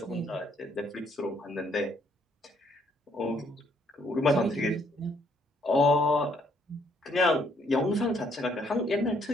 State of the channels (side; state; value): both; normal; correlation 0.67